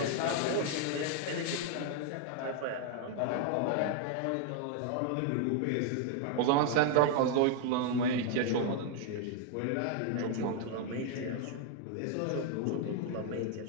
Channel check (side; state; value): both; different; correlation 0.00